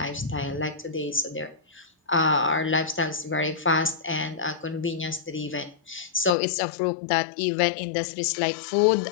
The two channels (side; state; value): right; drops out; at 6.4 s